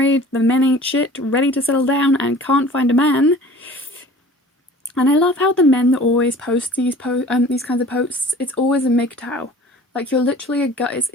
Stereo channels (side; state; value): both; normal; correlation 0.45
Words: the men ain't shit, ready to settle down and can't find a man. And I love how the men that always post these kinds of posts, it's always a MGTOW. Like, you're literally a guy,